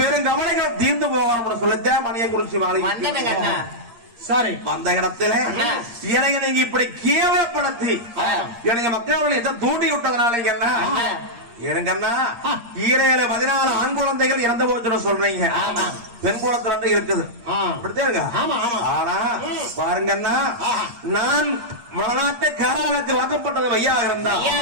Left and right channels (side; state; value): left; late; 8.6 ms